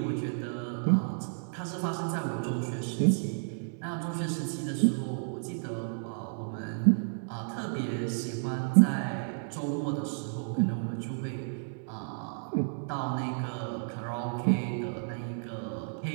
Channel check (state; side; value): silent; left; 57 dB below the other